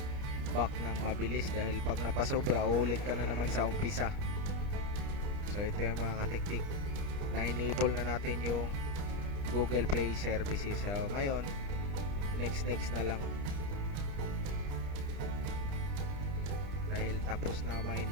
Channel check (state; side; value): late; left; 30 ms